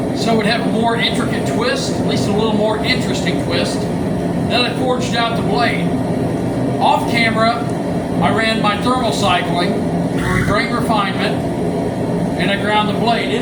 so it would have a more intricate twist, at least a little more interesting twist. Then I forged out the blade. Off camera, I ran my thermal cycling for grain refinement, and I ground the blade.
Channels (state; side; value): identical; both; correlation 1.00